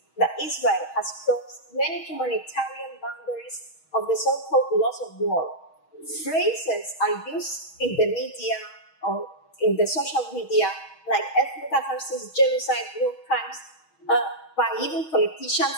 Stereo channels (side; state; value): right; late; 6.3 ms